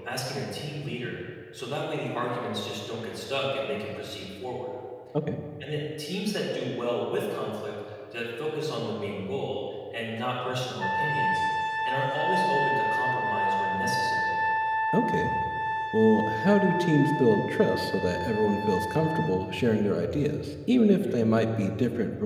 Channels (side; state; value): both; identical; correlation 1.00